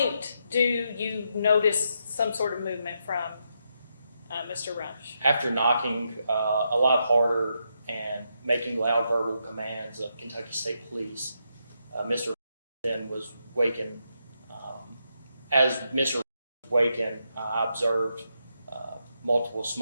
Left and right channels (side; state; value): both; inverted; correlation -0.81